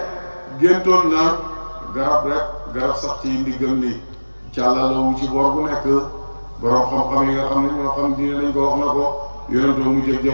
géntoon na garab sax ci ndiggam li càllalawu ci boor bu nekk borom xam-xam yi nga xam ne ñoo xam diine lañ ko wax na ko yonantu mu jël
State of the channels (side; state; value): both; inverted; correlation -1.00